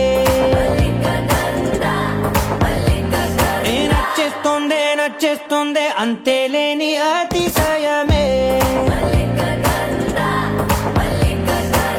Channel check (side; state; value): both; identical; correlation 1.00